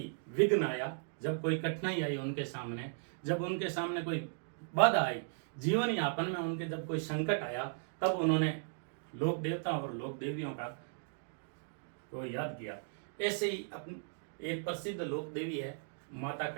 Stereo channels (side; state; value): left; silent; digital silence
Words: विघ्न आया, जब कोई कठिनाई आई उनके सामने, जब उनके सामने कोई बाधा आई, जीवन यापन में उनके जब कोई संकट आया, तब उन्होंने लोक देवता और लोक देवियों का को याद किया। ऐसे ही एक प्रसिद्ध लोक देवी है माता